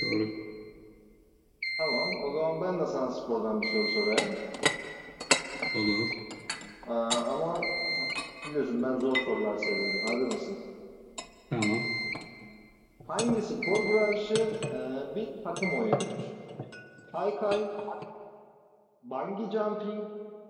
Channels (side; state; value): both; identical; correlation 1.00